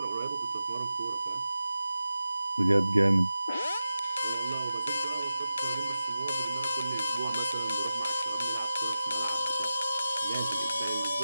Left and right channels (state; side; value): inverted; both; correlation -0.93